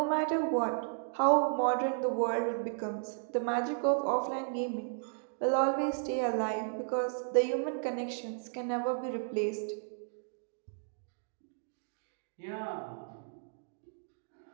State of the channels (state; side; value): silent; left; digital silence